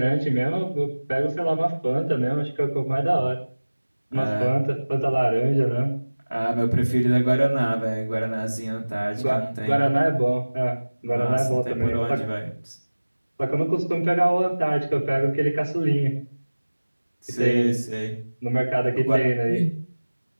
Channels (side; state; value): both; inverted; correlation -1.00